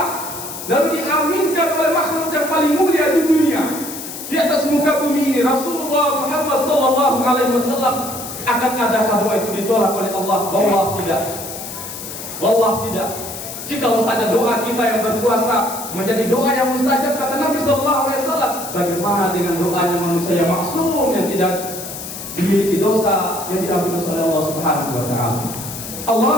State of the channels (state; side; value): noise; left; hiss, 9 dB below the sound